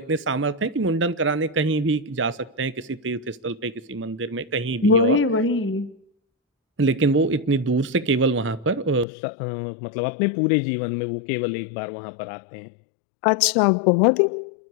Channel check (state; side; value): drops out; right; at 9.1 s